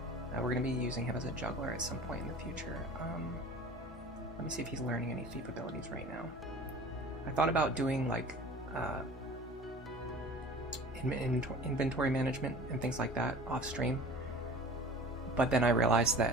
We're going to be using him as a juggler at some point in the future. Let me see if he's learning any thief abilities right now. I thought about doing like inventory management and things like that off stream, but then I realized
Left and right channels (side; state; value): both; normal; correlation 0.42